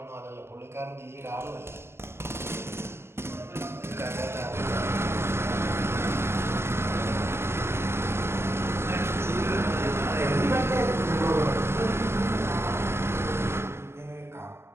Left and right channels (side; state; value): left; late; 0.12 ms